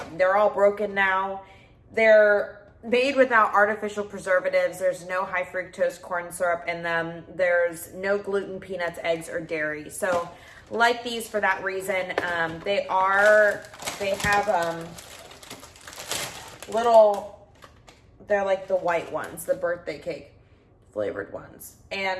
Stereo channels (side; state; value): both; identical; correlation 1.00